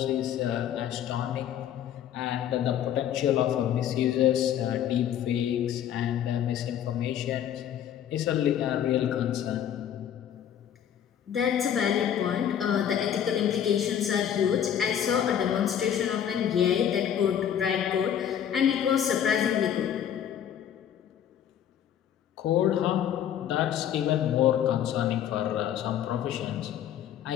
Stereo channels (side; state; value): right; quieter; 9.8 dB